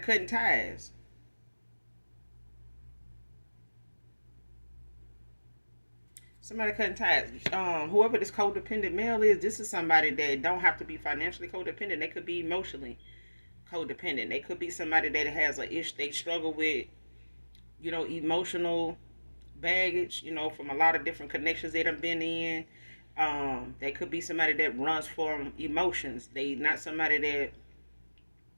ties. Somebody cutting ties. Whoever this codependent male is, this is somebody that don't have to be financially codependent. They could be emotionally codependent. They could be somebody that has a issue. They struggle with, emotional baggage. From a lot of different connections they done been in. They could be somebody that runs from emotions. They not somebody that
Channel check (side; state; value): both; inverted; correlation -1.00